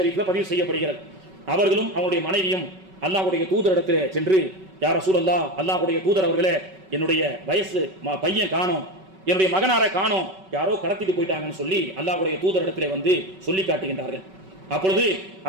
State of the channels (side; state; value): left; late; 5.3 ms